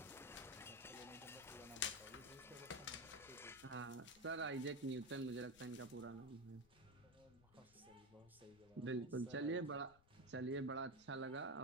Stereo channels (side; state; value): left; noise; rumble, 25 dB below the sound